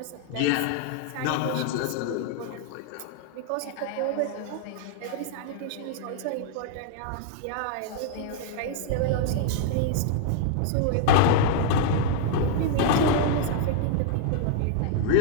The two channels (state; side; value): different; both; correlation -0.01